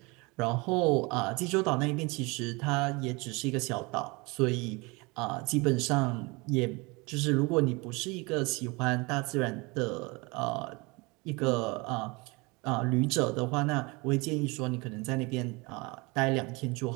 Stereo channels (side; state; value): left; quieter; 26.5 dB